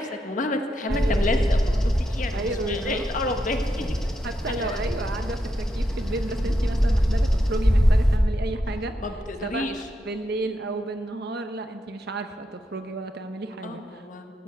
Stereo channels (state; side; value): normal; both; correlation 0.83